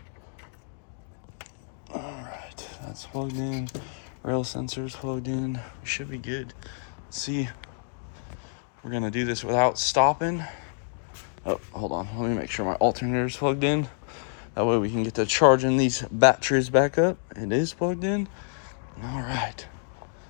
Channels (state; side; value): silent; right; digital silence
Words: All right, that's plugged in, rail sensors plugged in, we should be good. See, we're gonna do this without stopping. Oh, hold on. Let me make sure my alternator is plugged in. That way we can get to charging these batteries back up. It is plugged in. All right.